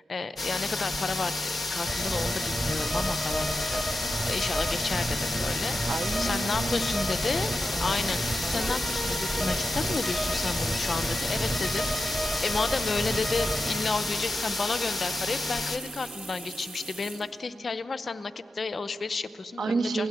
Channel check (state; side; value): normal; both; correlation 0.90